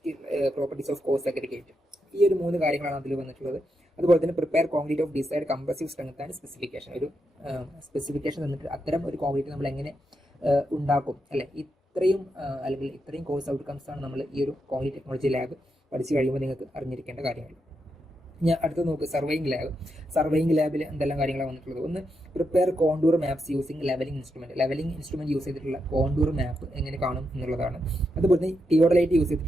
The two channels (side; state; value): both; normal; correlation 0.84